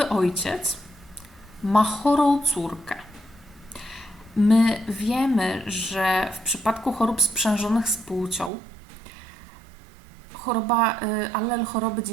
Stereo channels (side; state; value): left; drops out; at 8.5 s